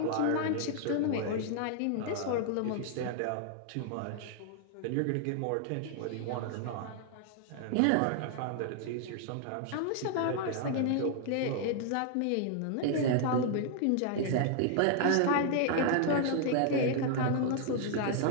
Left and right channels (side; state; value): both; different; correlation 0.00